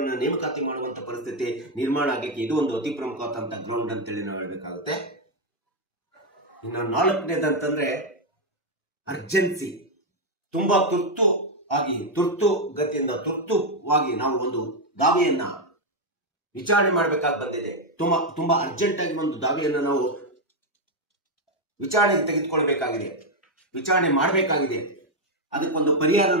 ಅನ್ನು ನೇಮಕಾತಿ ಮಾಡುವಂತ ಪರಿಸ್ಥಿತಿ ನಿರ್ಮಾಣ ಆಗಲಿಕ್ಕೆ ಇದು ಒಂದು ಅತಿ ಪ್ರಮುಖವಾದಂತಹ ಗ್ರೌಂಡ್ ಅಂತೇಳಿ ನಾವು ಹೇಳ್ಬೇಕಾಗುತ್ತೆ. ಇನ್ನು 4ನೇದಂತಂದ್ರೆ ಅರ್ಜೆನ್ಸಿ. ತುಂಬಾ ತುರ್ತುವಾಗಿ ನಾವು ಒಂದು ದಾವೆಯನ್ನ ವಿಚಾರಣೆ ಮಾಡಬೇಕಾಗಿ ಬಂದಿದೆ. ತುಂಬಾ ಅರ್ಜೆಂಟ್ ಆಗಿ ಒಂದು ದಾವೆಯನ್ನ ನಾವು ವಿಚಾರಣೆಗೆ ತೆಗೆದುಕೊಳ್ಬೇಕಾಗಿದೆ, ವಿಚಾರಣೆ ಮಾಡಬೇಕಾಗಿದೆ. ಅದಕ್ಕೊಂದು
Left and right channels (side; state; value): both; normal; correlation 0.03